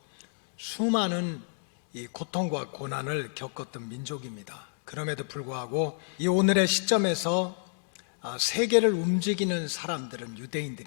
수많은 이 고통과 고난을 겪었던 민족입니다. 그럼에도 불구하고 이 오늘의 시점에서 세계를 움직이는 사람들은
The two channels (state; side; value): silent; right; digital silence